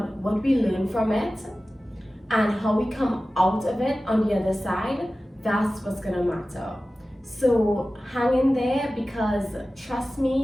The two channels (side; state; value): both; normal; correlation 0.96